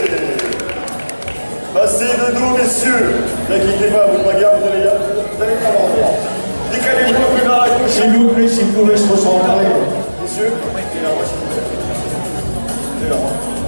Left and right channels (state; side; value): inverted; both; correlation -1.00